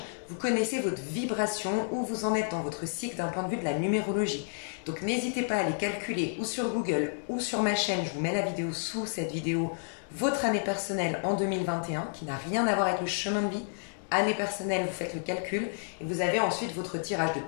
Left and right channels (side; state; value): right; silent; digital silence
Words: vous connaissez votre vibration, où vous en êtes dans votre cycle d'un point de vue de la numérologie. Donc n'hésitez pas à aller calculer ou sur Google ou sur ma chaîne, je vous mets la vidéo sous cette vidéo, votre année personnelle en 2021, qui n'a rien à voir avec le chemin de vie. Année personnelle, vous faites le calcul et vous avez ensuite votre tirage de